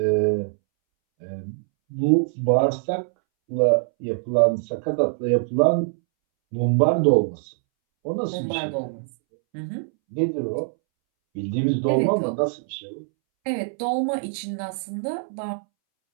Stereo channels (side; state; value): left; silent; 63 dB below the other